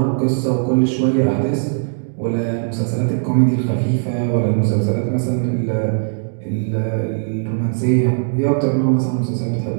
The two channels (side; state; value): left; silent; digital silence